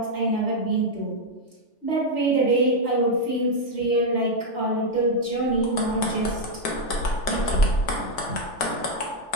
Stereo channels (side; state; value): right; late; 3.4 ms